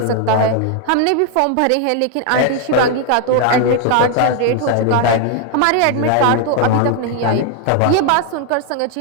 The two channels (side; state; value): both; different; correlation 0.01